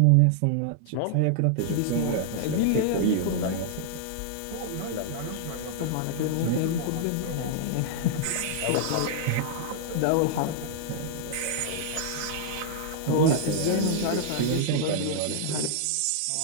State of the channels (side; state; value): both; different; correlation -0.01